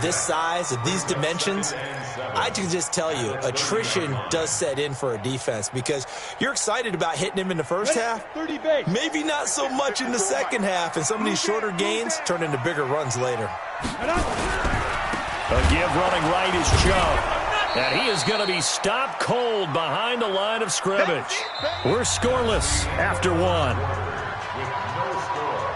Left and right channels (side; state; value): both; identical; correlation 1.00